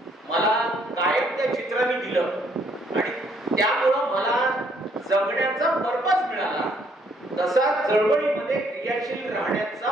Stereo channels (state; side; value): normal; both; correlation 0.67